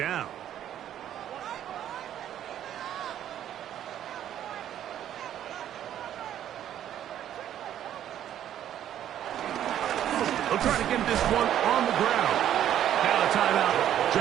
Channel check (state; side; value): quieter; left; 10.9 dB